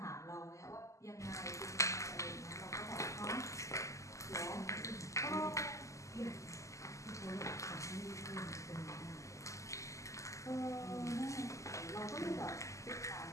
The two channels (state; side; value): late; right; 0.15 ms